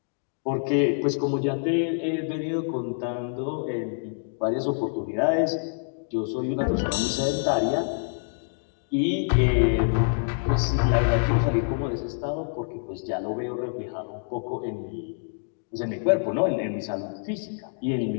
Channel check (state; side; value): silent; right; digital silence